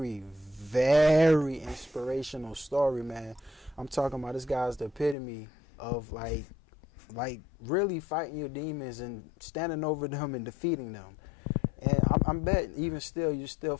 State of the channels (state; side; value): drops out; right; at 5.2 s